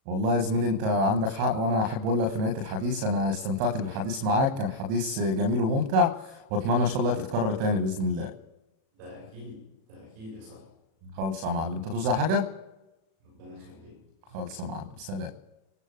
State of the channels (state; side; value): late; left; 37 ms